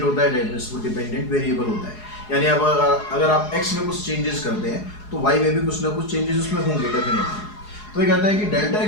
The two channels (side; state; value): right; late; 4.8 ms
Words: होता है, डेट मींस वो डिपेंडेंट वेरिएबल होता है। यानी अब अगर आप x में कुछ चेंजेस करते हैं तो y में भी कुछ ना कुछ चेंजेस उसमें होंगे डेफिनेटली। तो ये कहता है कि delta